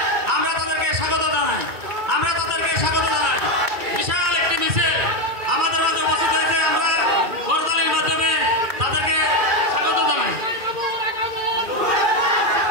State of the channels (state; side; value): late; left; 2.3 ms